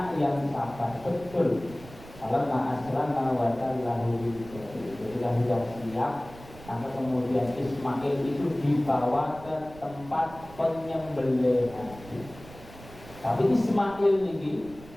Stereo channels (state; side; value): noise; right; rumble, 18 dB below the sound